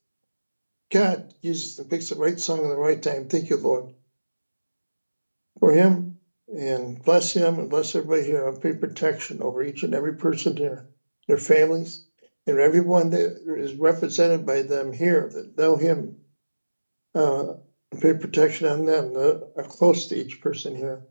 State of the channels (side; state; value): both; inverted; correlation -1.00